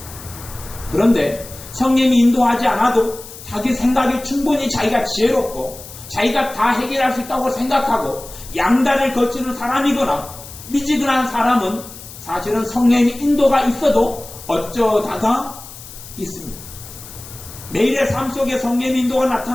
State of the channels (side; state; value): left; noise; hiss, 16 dB below the sound